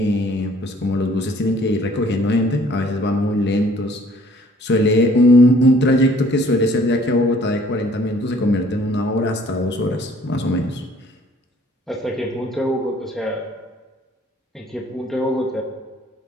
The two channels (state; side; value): normal; both; correlation 0.57